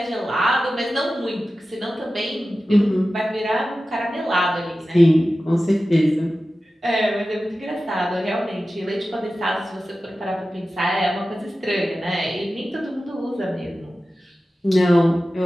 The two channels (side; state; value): both; normal; correlation 0.94